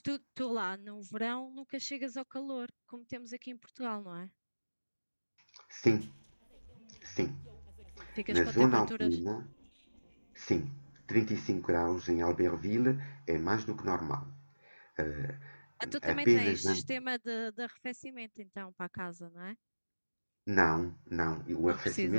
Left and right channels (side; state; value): both; inverted; correlation -1.00